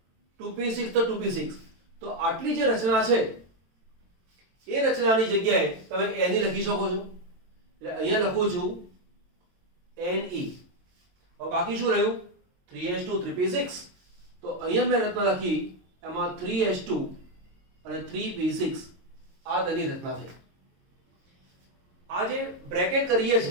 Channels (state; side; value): late; left; 22 ms